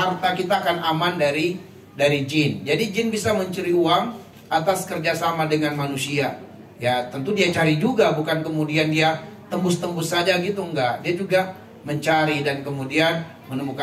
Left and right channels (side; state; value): both; identical; correlation 1.00